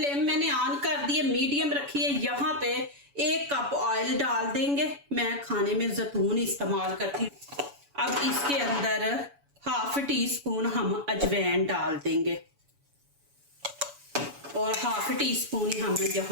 मैंने ऑन कर दी है, मीडियम रखी है। यहाँ पे 1 कप ऑयल डाल देंगे। मैं खाने में जैतून इस्तेमाल करती हूँ। अब इसके अंदर हाफ टी स्पून हम अजवाइन डाल देंगे और हाफ टी स्पून हम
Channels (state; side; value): late; left; 7.0 ms